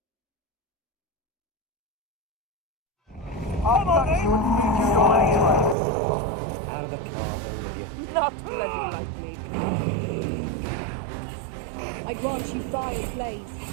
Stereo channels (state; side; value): drops out; left; at 5.8 s